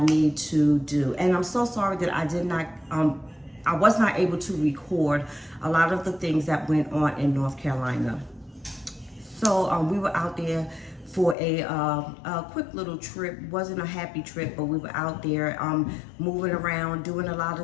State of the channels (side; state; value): right; drops out; at 11.4 s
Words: to do. And I'm so sorry that I was not able to record a lot of the things that went on in North Carolina. So we were out there for a quick little trip. Wasn't a happy trip, but we were out there moving around, doing a lot